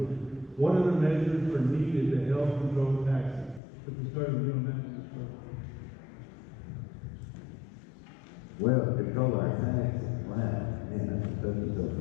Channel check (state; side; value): drops out; right; at 3.6 s